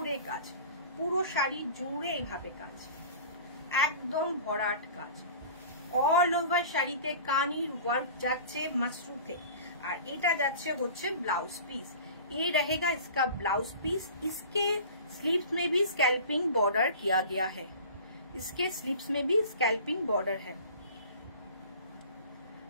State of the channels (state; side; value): inverted; both; correlation -0.41